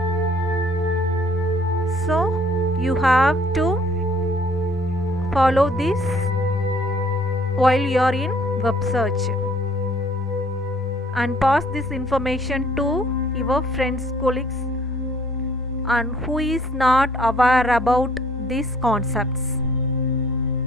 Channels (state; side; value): normal; both; correlation 0.59